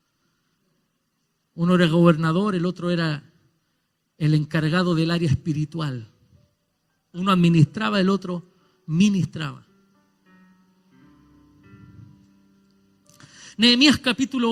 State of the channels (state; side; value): identical; both; correlation 1.00